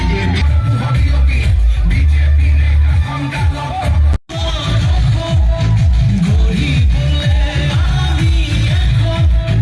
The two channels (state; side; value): identical; both; correlation 1.00